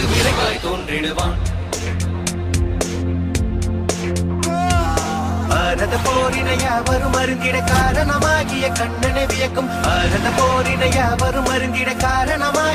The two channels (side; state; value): both; identical; correlation 1.00